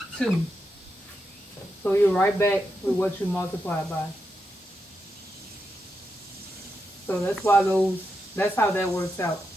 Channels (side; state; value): both; normal; correlation 0.85